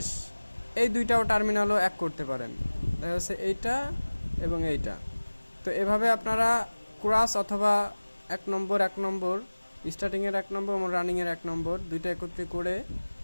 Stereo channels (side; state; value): both; inverted; correlation -1.00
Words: এই 2টাও টার্মিনালও এক করতে পারেন, দেখা যাচ্ছে এইটা এবং এইটা। তো এভাবে আপনারা ক্রস অথবা 1 নম্বর স্টার্টিংয়ের 1 নম্বর এবং রানিংয়ের 1 নম্বর 2টা একত্রে করে